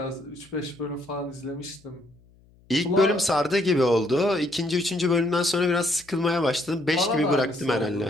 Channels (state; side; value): noise; left; hum, 29 dB below the sound